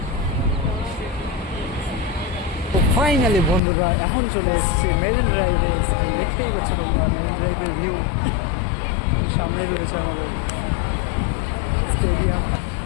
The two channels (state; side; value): drops out; right; at 3.6 s